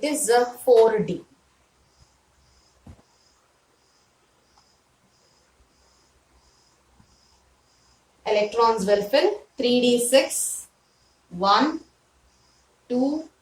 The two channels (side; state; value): both; identical; correlation 1.00